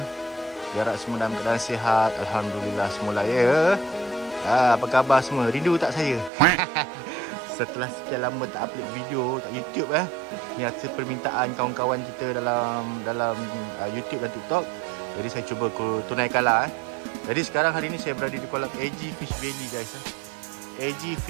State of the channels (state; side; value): drops out; left; at 6.3 s